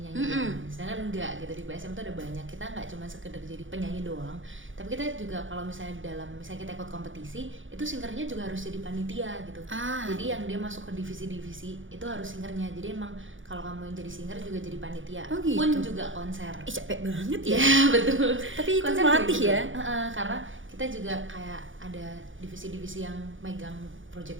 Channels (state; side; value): late; left; 0.57 ms